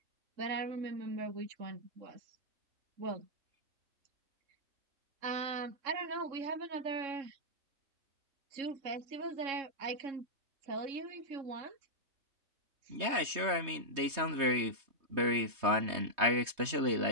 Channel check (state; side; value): late; left; 3.2 ms